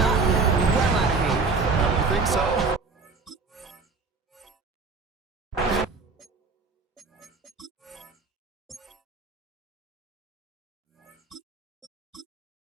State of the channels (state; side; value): quieter; left; 4.3 dB